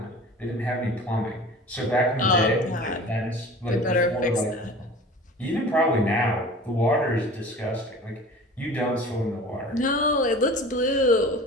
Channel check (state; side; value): normal; both; correlation 0.40